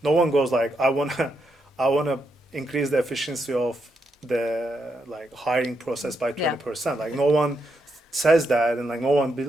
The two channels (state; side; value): normal; both; correlation 0.81